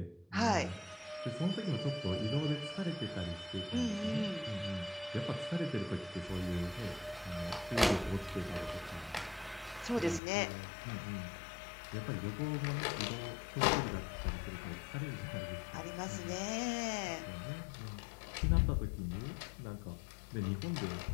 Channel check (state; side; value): drops out; right; at 10.2 s